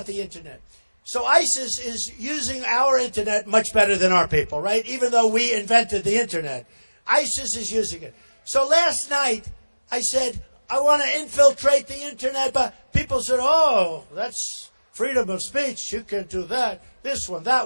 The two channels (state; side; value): inverted; both; correlation -1.00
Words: the internet. So ISIS is using our internet much better than our people, right? Even though we invented the internet. ISIS is using it. So last night, I said, I want to infiltrate the internet, but people said, oh, that's freedom of speech. You can't do that. This one,